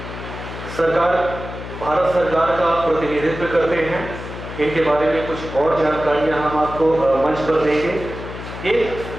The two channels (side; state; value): left; noise; hum, 10 dB below the sound